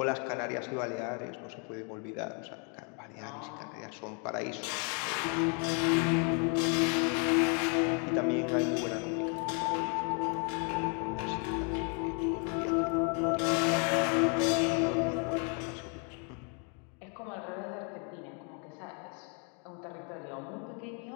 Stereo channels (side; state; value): right; quieter; 38.0 dB